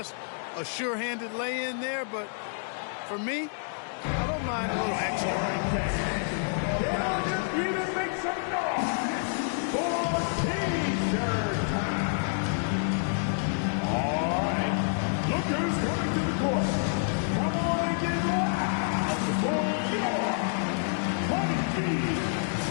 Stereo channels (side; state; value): right; silent; digital silence